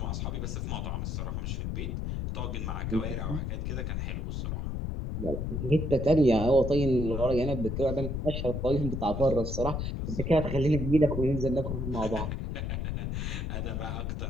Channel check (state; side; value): noise; left; rumble, 2 dB below the sound